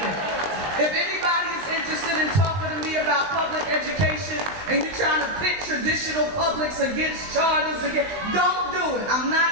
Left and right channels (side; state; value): left; late; 20 ms